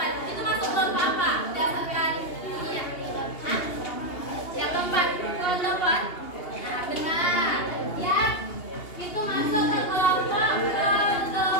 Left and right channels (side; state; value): right; late; 2.8 ms